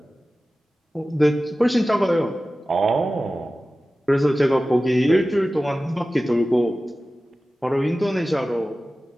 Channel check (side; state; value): both; normal; correlation 0.96